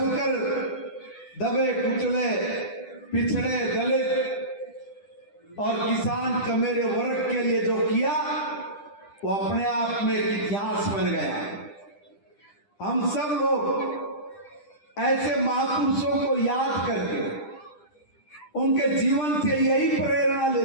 दबे कुचले पिछड़े दलित और किसान कमेरे वर्ग के लिए जो किया वो अपने आप में एक इतिहास बन गया। हम सब लोग ऐसे महापुरुषों को याद करके उनके जीवन से यही प्रेरणा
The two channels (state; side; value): late; right; 10 ms